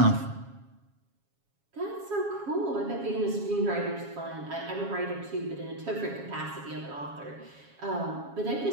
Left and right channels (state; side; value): late; left; 7.2 ms